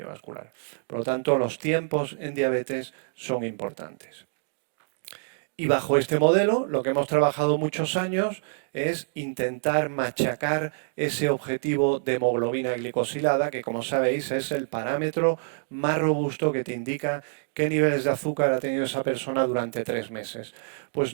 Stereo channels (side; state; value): left; silent; digital silence